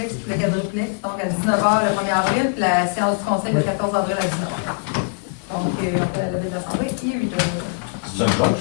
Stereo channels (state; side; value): silent; right; 64 dB below the other